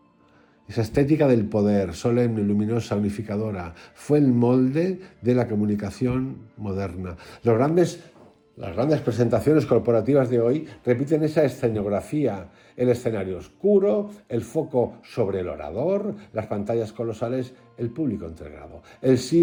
Esa estética del poder, solemne, luminosa, unificadora, fue el molde de la comunicación moderna. Las grandes presentaciones corporativas de hoy repiten esa escenografía, el escenario oscuro, el foco sobre el orador, las pantallas colosales, el público entregado. El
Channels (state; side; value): identical; both; correlation 1.00